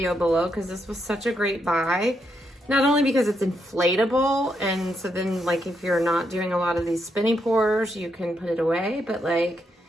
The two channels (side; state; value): both; normal; correlation 0.80